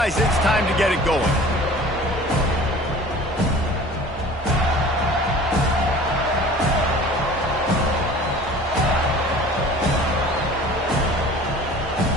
it's time to get it going.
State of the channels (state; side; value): normal; both; correlation 0.44